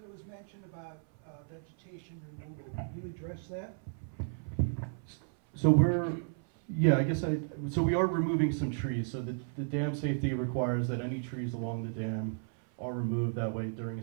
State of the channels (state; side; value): silent; left; 55 dB below the other